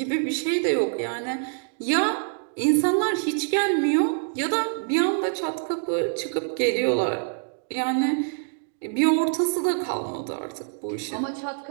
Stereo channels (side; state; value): left; silent; digital silence